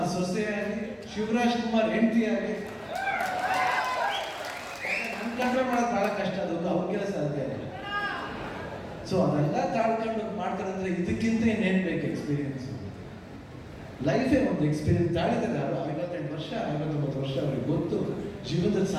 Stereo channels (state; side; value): identical; both; correlation 1.00